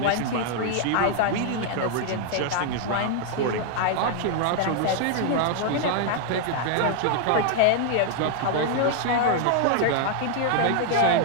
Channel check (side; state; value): both; different; correlation 0.00